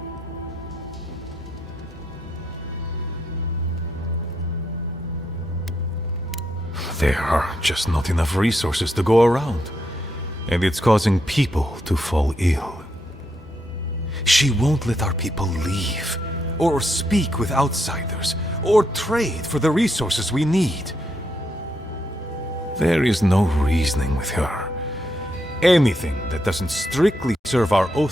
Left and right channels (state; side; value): normal; both; correlation 0.79